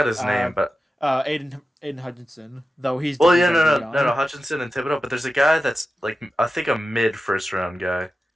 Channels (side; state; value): both; normal; correlation 0.92